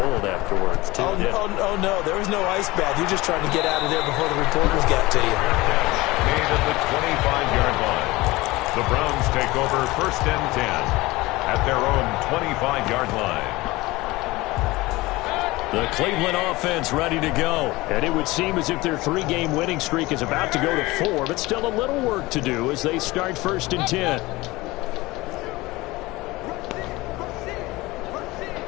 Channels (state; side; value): quieter; right; 20.6 dB